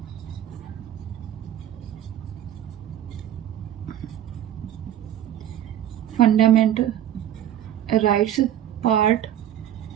फंडामेंटल राइट्स पार्ट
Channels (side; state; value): left; quieter; 11.4 dB